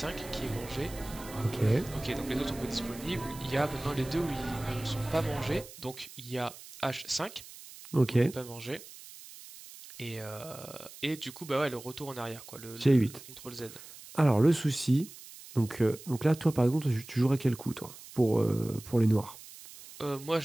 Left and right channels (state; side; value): noise; right; hiss, 17 dB below the sound